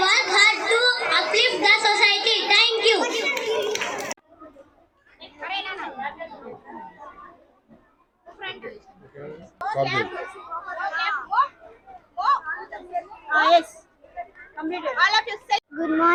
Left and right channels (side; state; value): both; identical; correlation 1.00